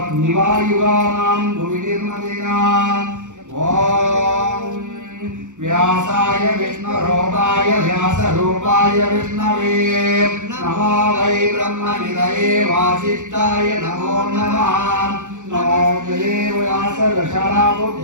निवायुगानां भुविनिर्मदिना ॐ व्यासाय विष्णुरूपाय व्यासरूपाय विष्णवे नमो वै ब्रह्मनिधये वासिष्ठाय नमो नमः नमो देव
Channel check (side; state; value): left; late; 0.85 ms